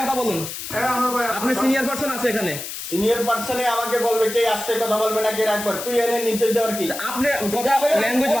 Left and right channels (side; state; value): left; noise; hiss, 8 dB below the sound